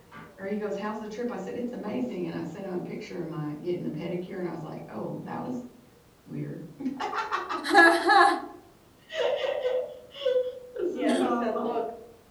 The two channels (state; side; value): identical; both; correlation 1.00